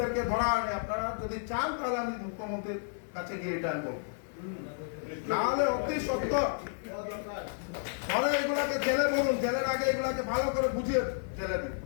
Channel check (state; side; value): silent; right; digital silence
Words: ধরা হয়নি। আপনারা যদি চান তাহলে আমি মুখ্যমন্ত্রীর কাছে গিয়ে এটা বলবো, নাহলে অতি সত্য পরে এগুলাকে জেলে বলুন, জেলের আগে এগুলাকে ভালো করে বুঝিয়ে জেলে দিন।